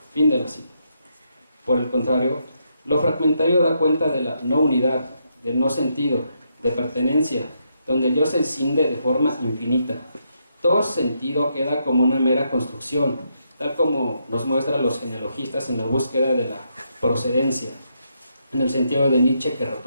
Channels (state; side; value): inverted; both; correlation -0.79